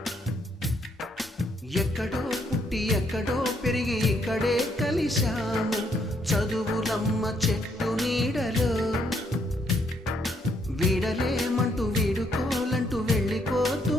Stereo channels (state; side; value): normal; both; correlation 0.72